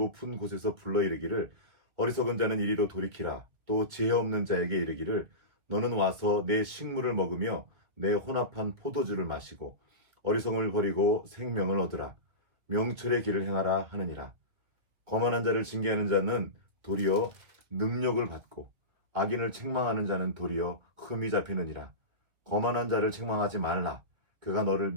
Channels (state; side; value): late; left; 2.3 ms